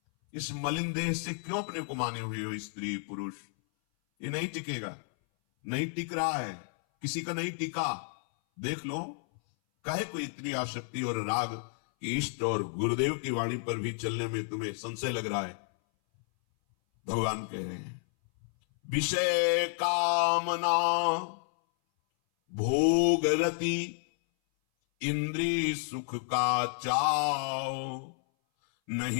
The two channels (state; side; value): silent; right; 57 dB below the other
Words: इस मलिन देह से क्यों अपने को माने हुए हो स्त्री पुरुष? ये नहीं टिकेगा, नहीं टिक रहा है, किसी का नहीं टिका। देख लो, काहे को इतनी आसक्ति और राग कि इष्ट और गुरुदेव की वाणी पर भी चलने में तुम्हें संशय लग रहा है। भगवान कह रहे हैं, विषय कामना भोग रति इंद्रिय सुख का चाव,